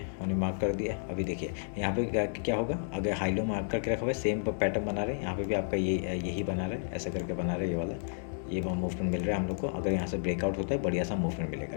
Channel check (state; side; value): silent; right; digital silence